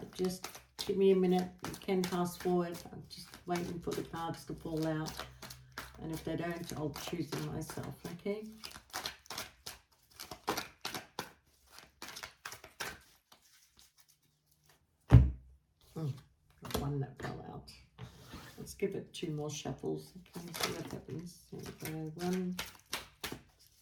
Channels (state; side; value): identical; both; correlation 1.00